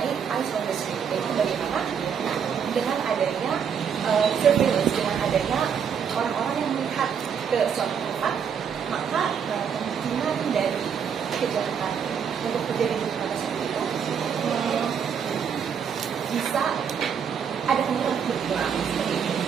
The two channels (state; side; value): quieter; left; 7.3 dB